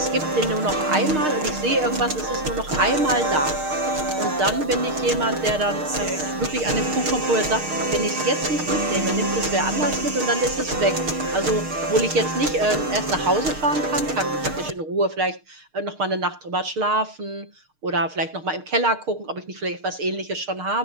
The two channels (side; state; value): left; late; 6.5 ms